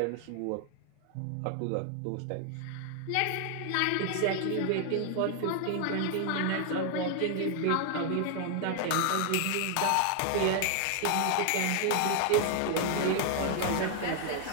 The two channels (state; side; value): different; both; correlation 0.00